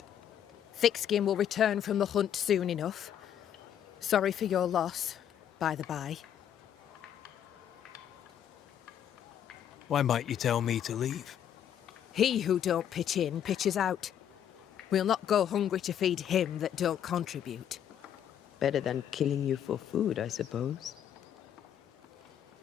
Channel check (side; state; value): right; quieter; 9.7 dB